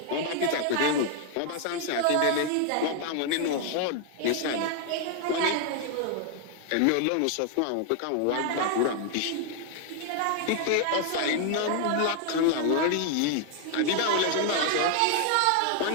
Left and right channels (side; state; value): both; different; correlation 0.00